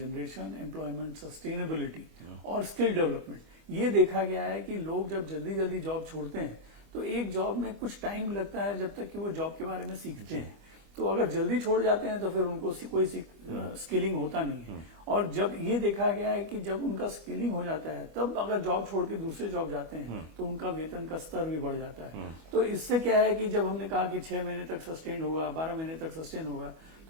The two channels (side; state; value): left; late; 25 ms